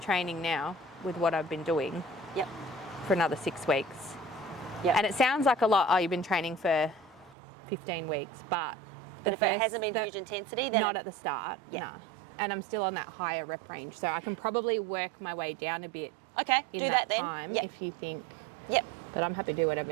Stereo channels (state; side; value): drops out; left; at 7.4 s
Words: now with what I've been doing. Yep. For another 6 weeks. Yep. And it sounds like a lot. Oh, you've been training for 15 weeks, but if it hasn't been huge intensity, then not at the start. No. And I'm still on that higher rep range, so I can probably work my way down a bit. Okay. In do that then. time, if you think. Yep. But I'm happy to do whatever